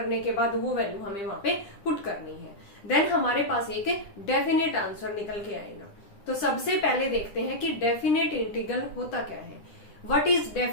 के बाद वो वैल्यू हमें वहां पे पुट करनी है. देन हमारे पास एक डेफिनेट आंसर निकल के आएगा. तो सबसे पहले देखते हैं कि डेफिनेट इंटीग्रल होता क्या है. What is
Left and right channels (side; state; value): right; late; 10 ms